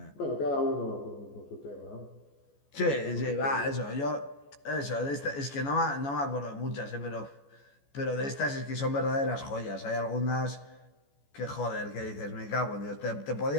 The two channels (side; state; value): right; late; 14 ms